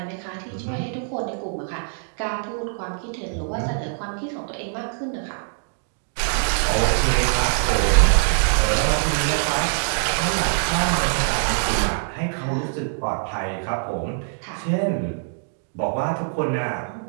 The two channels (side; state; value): left; silent; digital silence